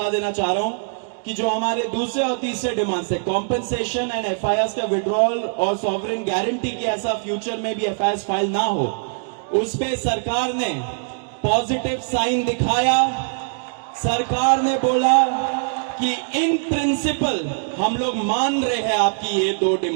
देना चाह रहा हूं कि जो हमारे दूसरे और तीसरे डिमांड्स है, कॉम्पेंसेशन एंड एफआईआर का विड्रॉल और सॉवरेन गारंटी की ऐसा फ्यूचर में भी एफआईआर फाइल ना हो, उस पे सरकार ने पॉजिटिव साइन दिखाया। सरकार ने बोला कि इन प्रिंसिपल हम लोग मान रहे हैं आपकी ये 2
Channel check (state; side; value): silent; left; digital silence